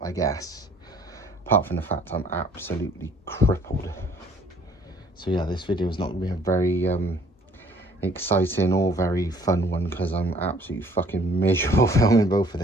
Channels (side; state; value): both; normal; correlation 0.58